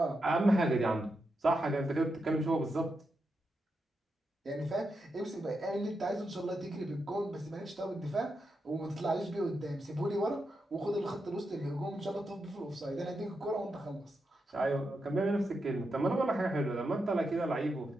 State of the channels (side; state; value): both; normal; correlation 0.86